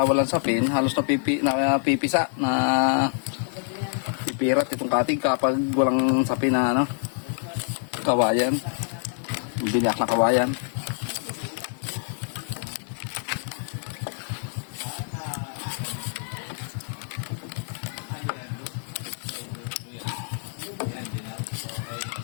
walang sapin, halos pipisa na pipirat itong katig kapag walang sapin na ano, kawayan. Binyak na kawayan.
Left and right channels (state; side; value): silent; right; digital silence